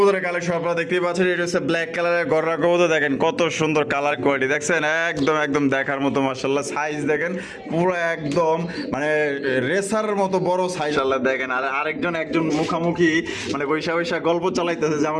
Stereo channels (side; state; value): both; identical; correlation 1.00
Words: কালেকশন আপনারা দেখতেই পাচ্ছেন এটা হচ্ছে ব্ল্যাক কালারের গররা কবুতর দেখেন কত সুন্দর কালার কোয়ালিটি দেখছেন একদম দেখার মতো মাশাআল্লাহ সাইজ দেখেন পুরো একদম মানে রেসার মতো বড় সাইজ আল্লাহ দেখেন আর আরেকজন একজন মুখামুখি মানে বৈশা গল্প চালাইতেছে যে